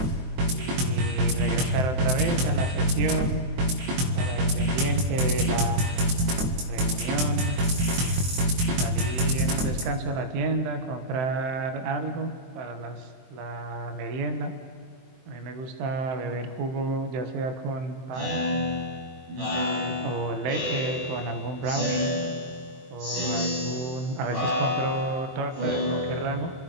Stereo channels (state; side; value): late; left; 23 ms